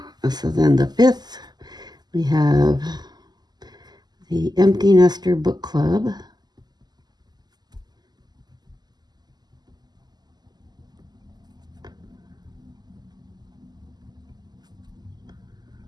so then the 5th, we have the Empty Nester Book Club.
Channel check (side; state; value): left; late; 0.20 ms